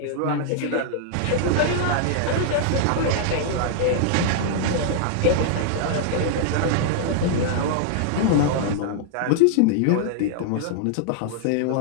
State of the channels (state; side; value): different; both; correlation -0.01